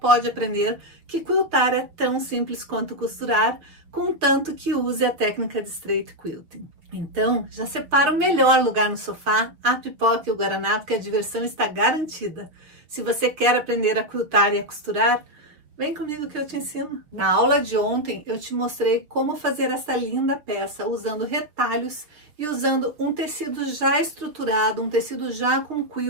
aprender que quiltar é tão simples quanto costurar, contanto que use a técnica de straight quilting. Então, já separa o melhor lugar no sofá, a pipoca e o guaraná, porque a diversão está garantida. Se você quer aprender a quiltar e a costurar, vem comigo que eu te ensino. Na aula de ontem eu te mostrei como fazer essa linda peça usando retalhos e usando um tecido já estruturado, um tecido já com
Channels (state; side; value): late; left; 6.3 ms